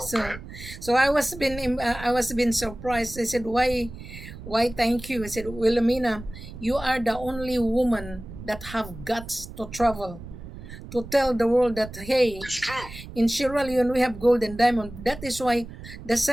So I was been surprised. I said, why thank you? I said, Wilhelmina, you are the only woman that have guts to travel, to tell the world that, hey, in Sierra Leone we have gold and diamond. That is why the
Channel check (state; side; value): noise; right; rumble, 14 dB below the sound